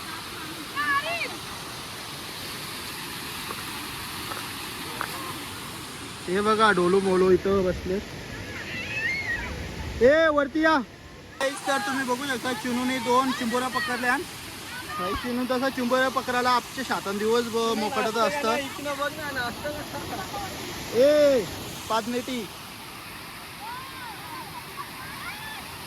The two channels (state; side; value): identical; both; correlation 1.00